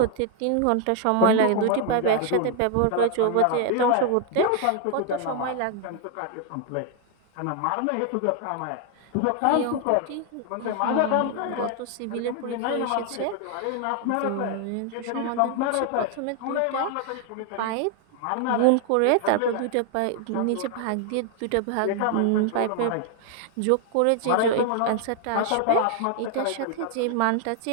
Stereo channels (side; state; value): both; different; correlation 0.00